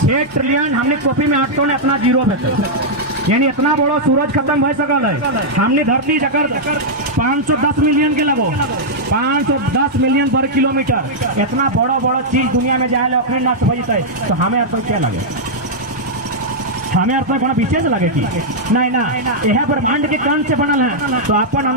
6 ट्रिलियन हमने कॉपी में 800 ने अपना जीरो भेजे यानी इतना बड़ा सूरज खत्म हो सकल है। हमने धरती जकर 510 मिलियन के लगो 510 मिलियन वर्ग किलोमीटर इतना बड़ा चीज दुनिया में जाए अपने नष्ट हो जाता है तो हमें अर्थ क्या लगे? हमें अर्थ में विशेष लगे कि नहीं ना यह ब्रह्मांड के कण से बनल है तो अपन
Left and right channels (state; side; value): normal; both; correlation -0.07